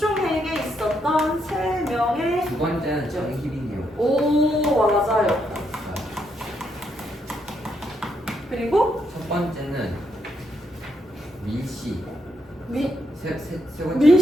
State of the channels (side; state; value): both; normal; correlation 0.78